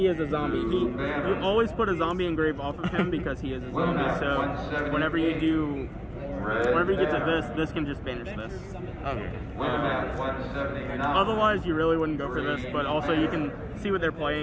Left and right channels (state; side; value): identical; both; correlation 1.00